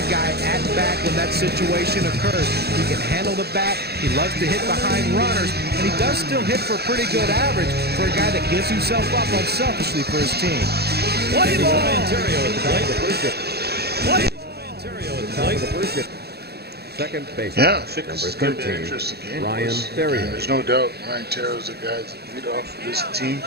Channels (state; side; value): late; left; 0.47 ms